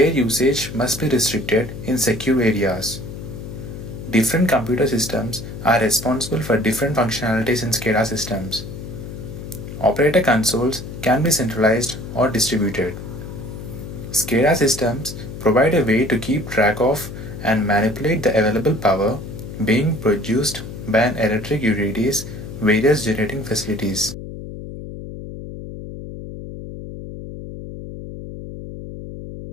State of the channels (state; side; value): noise; left; hum, 10 dB below the sound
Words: usage must be restricted in secure areas. Different computer systems are responsible for different functionalities in SCADA systems. Operator consoles can be centralized or distributed. SCADA systems provide a way to keep track of and manipulate the available power being produced by an electric utility's various generating facilities.